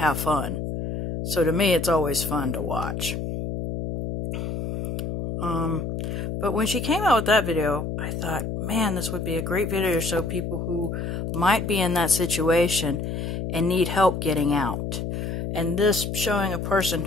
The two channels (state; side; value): noise; left; hum, 4 dB below the sound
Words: fun. So to me, it's always fun to watch. But when she came out with that video, I thought, man, this would be a great video to show people who might be in that situation and need help getting out. And this showing a person